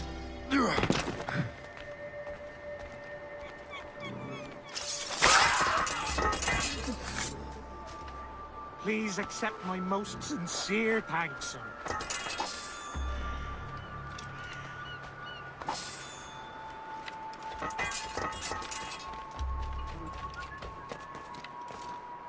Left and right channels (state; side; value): identical; both; correlation 1.00